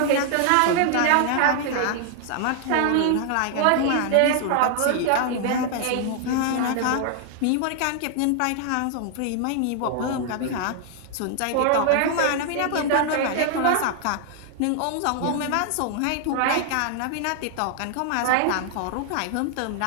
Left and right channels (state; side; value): different; both; correlation 0.00